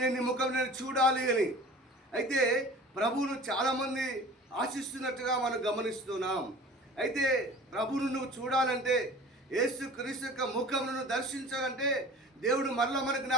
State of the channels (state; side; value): normal; both; correlation 0.42